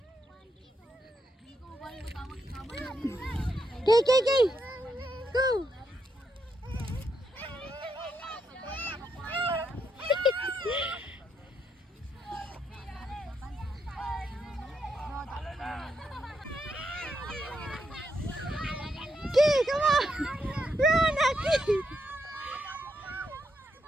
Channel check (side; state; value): both; normal; correlation 0.80